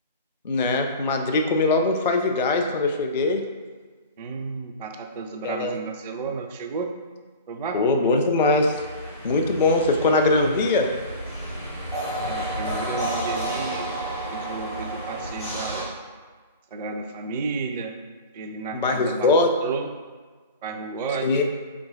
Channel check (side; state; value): both; inverted; correlation -0.32